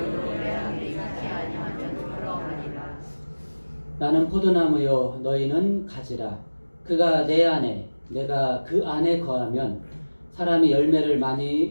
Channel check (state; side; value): inverted; both; correlation -1.00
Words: 내 안에 있지 아니하면 그러하리라. 나는 포도나무요 너희는 가지라. 그가 내 안에 내가 그 안에 거하면 사람이 열매를 많이